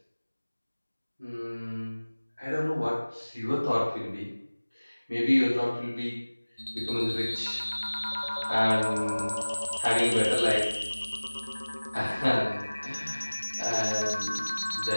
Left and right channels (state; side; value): inverted; both; correlation -1.00